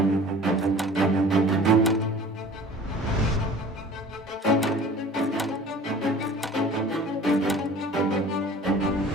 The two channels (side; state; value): both; normal; correlation 0.45